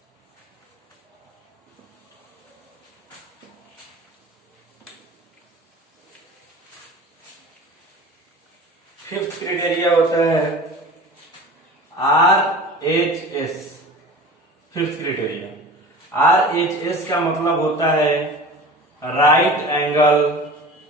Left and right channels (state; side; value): normal; both; correlation 0.38